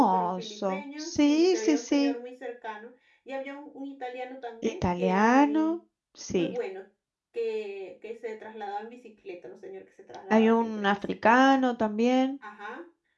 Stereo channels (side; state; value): both; identical; correlation 1.00